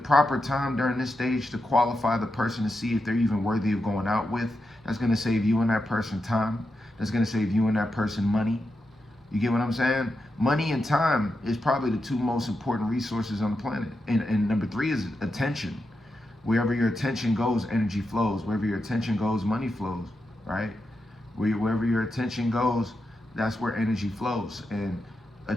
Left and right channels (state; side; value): normal; both; correlation 0.87